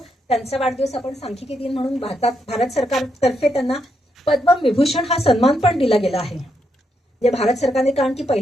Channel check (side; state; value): both; normal; correlation 0.80